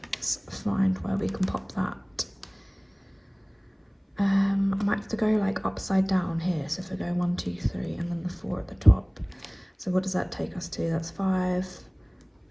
find where we can pop that. I might have to go like upside down here. So if I go 1, 2, 3, and then the 4 at the top. So what does that take us to? That's 5,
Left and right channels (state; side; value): identical; both; correlation 1.00